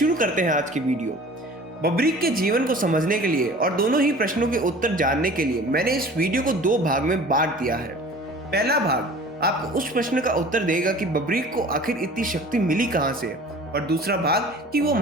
करते हैं आज की वीडियो। बब्रीक के जीवन को समझने के लिए और दोनों ही प्रश्नों के उत्तर जानने के लिए मैंने इस वीडियो को दो भाग में बांट दिया है। पहला भाग आपको उस प्रश्न का उत्तर देगा कि बब्रीक को आखिर इतनी शक्ति मिली कहां से, और दूसरा भाग कि वो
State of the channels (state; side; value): normal; both; correlation 0.44